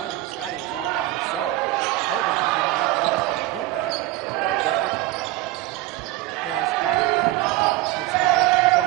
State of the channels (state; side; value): quieter; left; 16.7 dB